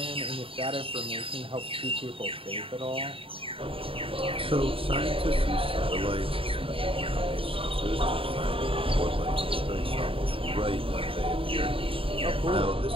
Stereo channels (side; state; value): left; late; 0.26 ms